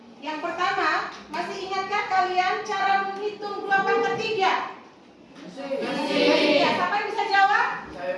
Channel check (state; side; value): identical; both; correlation 1.00